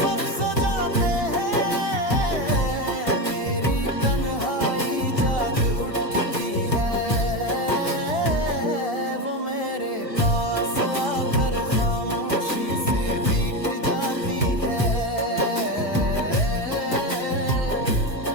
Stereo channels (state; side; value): late; right; 1.4 ms